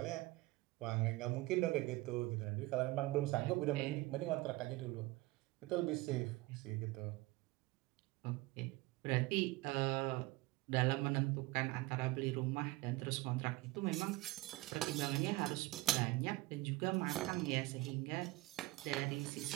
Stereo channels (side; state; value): left; quieter; 20.1 dB